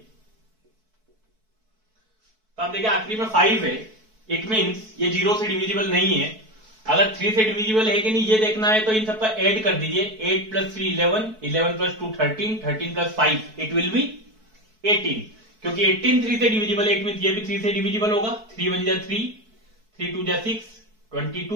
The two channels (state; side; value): late; left; 4.6 ms